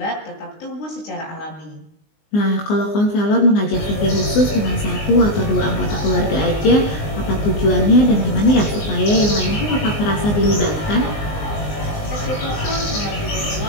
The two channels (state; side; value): late; right; 19 ms